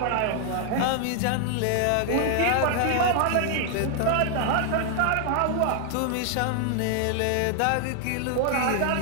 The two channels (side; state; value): both; different; correlation 0.00